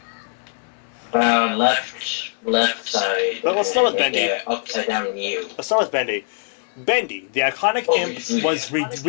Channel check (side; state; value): right; silent; digital silence